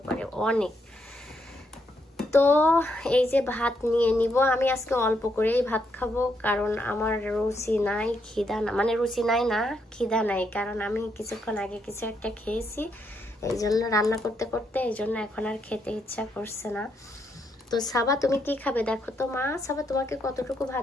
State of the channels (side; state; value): both; normal; correlation 0.77